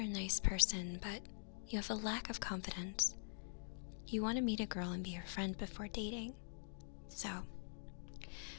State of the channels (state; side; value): silent; right; digital silence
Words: a nice person, but you have a lack of confidence. You want to meet a girl and be her friend before dating. So,